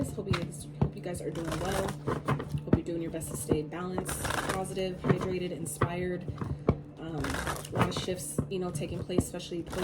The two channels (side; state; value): both; identical; correlation 1.00